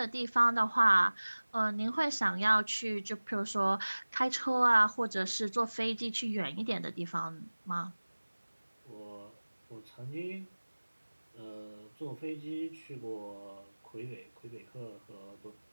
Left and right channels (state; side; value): inverted; both; correlation -1.00